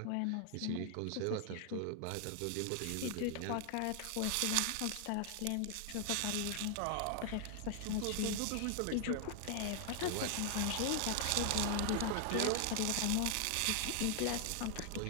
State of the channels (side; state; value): both; different; correlation 0.00